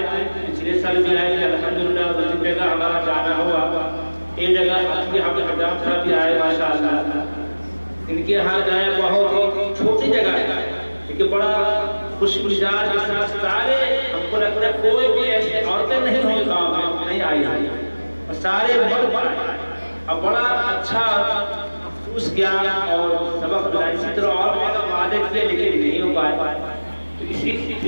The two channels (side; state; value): both; inverted; correlation -1.00